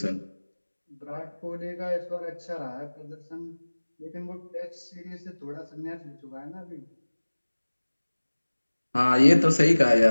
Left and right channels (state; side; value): inverted; both; correlation -1.00